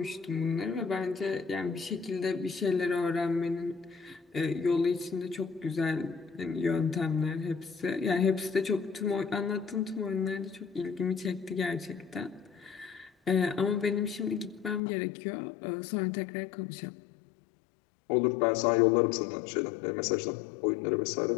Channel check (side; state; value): right; drops out; at 14.8 s